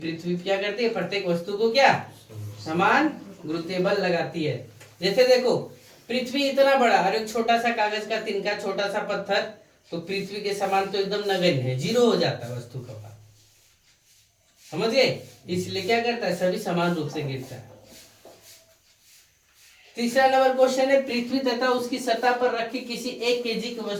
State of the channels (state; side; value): identical; both; correlation 1.00